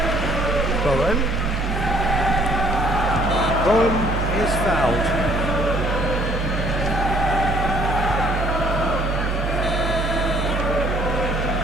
Bowen. Bowen is fouled.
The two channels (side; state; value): both; normal; correlation 0.60